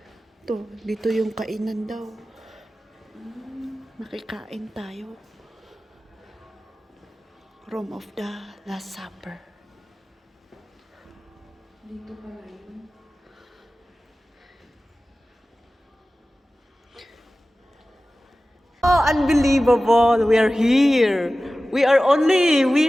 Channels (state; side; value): normal; both; correlation 0.96